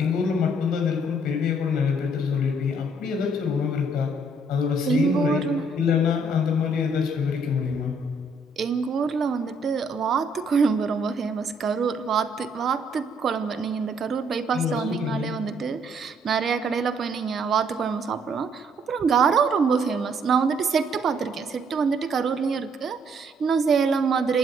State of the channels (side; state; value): both; normal; correlation 0.67